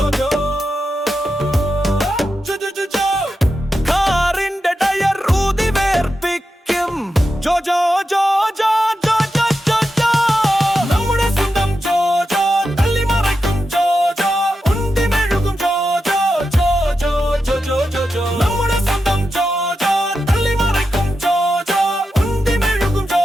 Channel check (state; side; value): normal; both; correlation 0.89